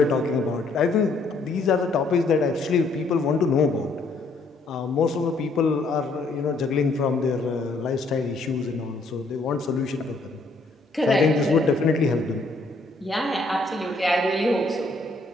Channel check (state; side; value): quieter; right; 3.3 dB